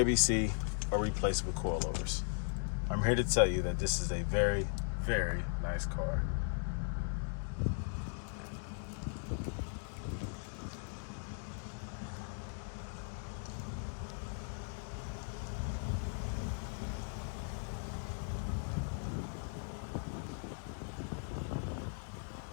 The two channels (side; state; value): right; silent; 52 dB below the other